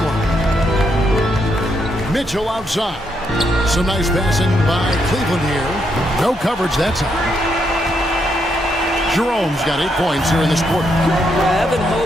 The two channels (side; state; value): both; normal; correlation 0.78